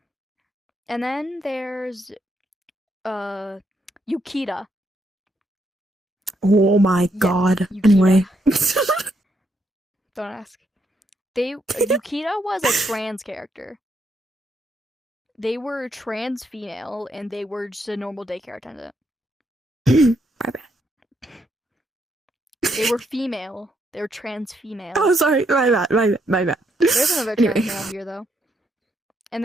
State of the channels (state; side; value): normal; both; correlation 0.77